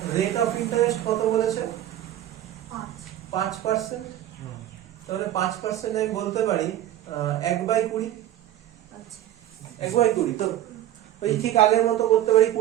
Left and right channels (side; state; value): left; quieter; 12.6 dB